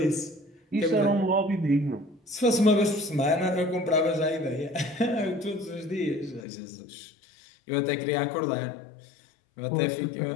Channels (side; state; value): right; drops out; at 6.5 s